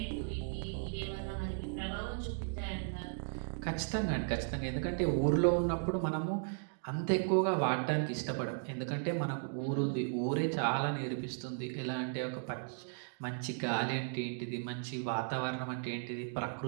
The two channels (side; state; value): left; silent; digital silence